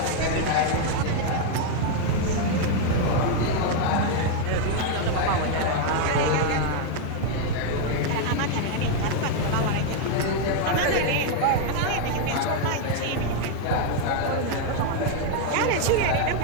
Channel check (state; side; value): different; both; correlation 0.00